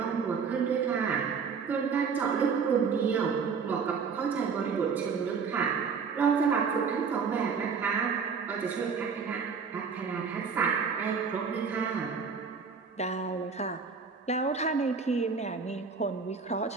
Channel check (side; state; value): left; quieter; 5.7 dB